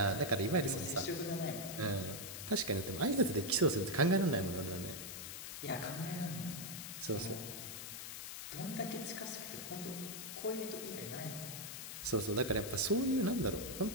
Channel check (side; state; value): left; noise; hiss, 8 dB below the sound